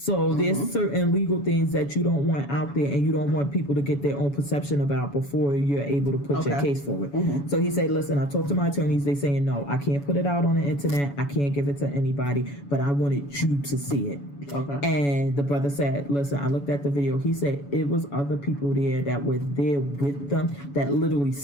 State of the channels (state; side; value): late; right; 7.1 ms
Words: there's certain legal things that you don't want out there, and you don't want people to get their own perception about before you're able to put your case forward. So he said, listen, I talked to my attorneys. They saying, no, I can't put it out on the internet. I can't give it to anybody, but I wanted you to see it. And the brother said, listen, I looked at the video. He said it was other people there that were there with them that literally